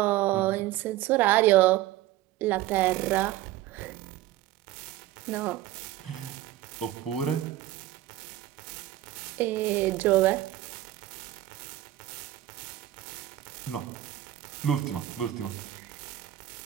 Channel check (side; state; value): left; quieter; 14.5 dB